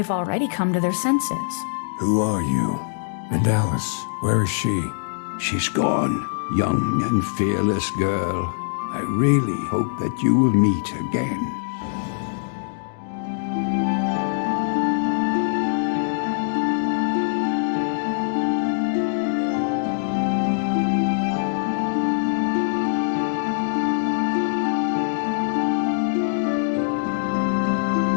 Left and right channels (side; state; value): right; silent; digital silence